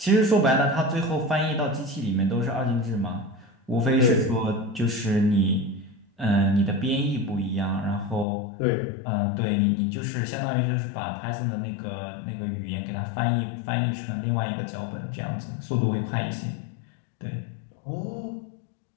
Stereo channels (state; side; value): drops out; right; at 8.2 s